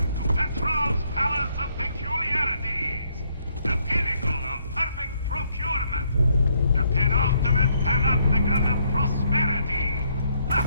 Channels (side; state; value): both; inverted; correlation -0.72